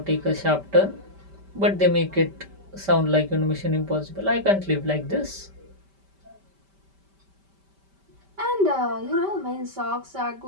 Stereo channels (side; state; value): left; late; 5.1 ms